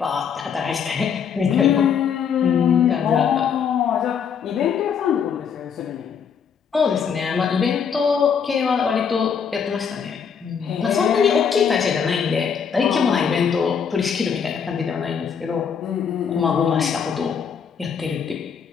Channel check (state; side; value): quieter; right; 7.0 dB